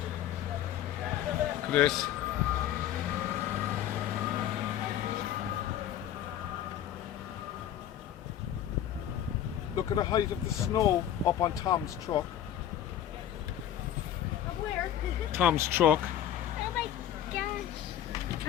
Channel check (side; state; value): right; quieter; 10.9 dB